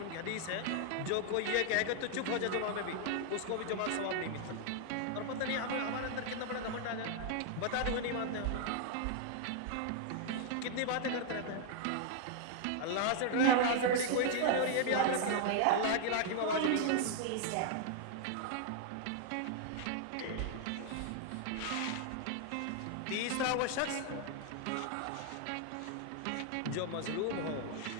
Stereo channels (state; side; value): different; both; correlation 0.00